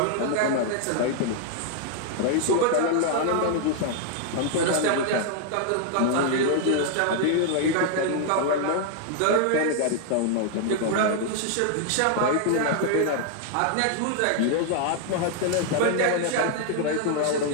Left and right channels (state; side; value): different; both; correlation 0.00